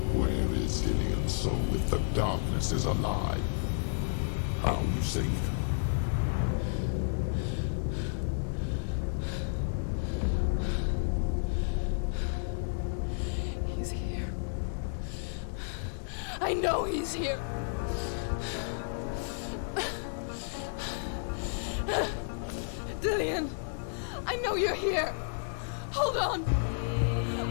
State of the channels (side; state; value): right; silent; digital silence